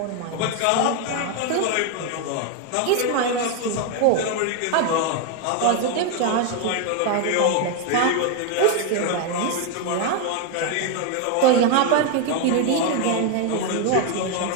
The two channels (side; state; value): both; different; correlation 0.01